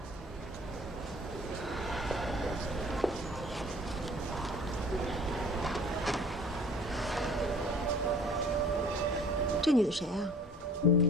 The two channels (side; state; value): both; normal; correlation 0.49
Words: 这女的谁啊？